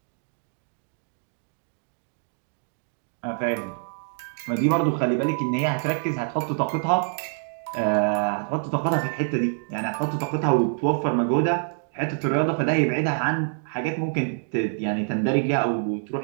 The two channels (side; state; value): left; silent; 61 dB below the other